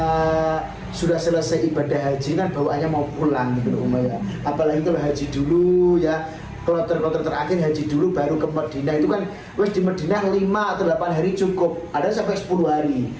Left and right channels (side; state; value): both; identical; correlation 1.00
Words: sudah selesai ibadah haji kan bawaannya mau pulang gitu Umayyah. Apalagi kalau haji dulu ya, kloter terakhir haji dulu baru ke Madinah itu kan wes di Madinah 5 atau 8 hari cukup. Ada sampai 10 hari,